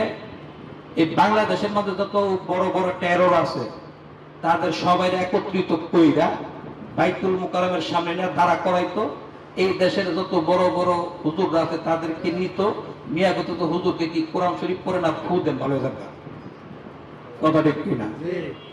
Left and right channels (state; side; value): identical; both; correlation 1.00